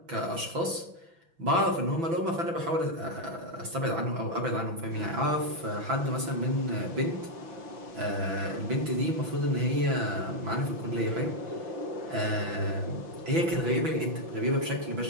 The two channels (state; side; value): late; left; 6.0 ms